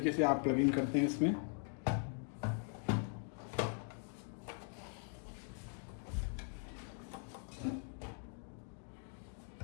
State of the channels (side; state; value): right; silent; 50 dB below the other